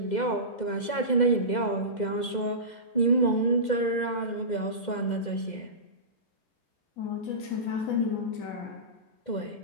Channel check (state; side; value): late; right; 2.0 ms